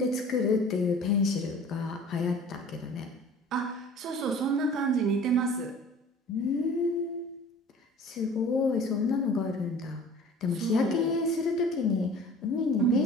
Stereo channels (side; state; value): both; normal; correlation 0.45